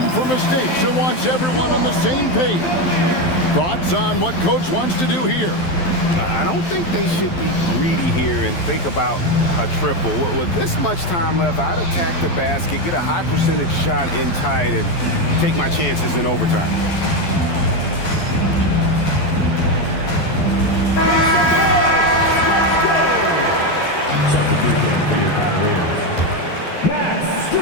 for mistakes and wants everyone on the same page. Thoughts on what Coach wants to do here? I don't think they should be greedy here and think about a triple. With this much time left, I'd attack the basket, get a high percentage shot in tight, and take my chances in overtime. Substitution for your Cavaliers.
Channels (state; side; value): late; right; 12 ms